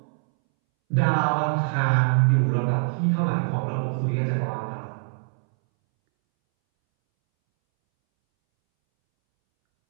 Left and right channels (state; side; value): silent; left; 63 dB below the other